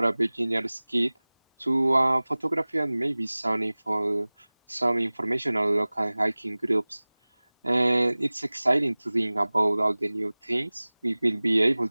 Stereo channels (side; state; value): both; inverted; correlation -1.00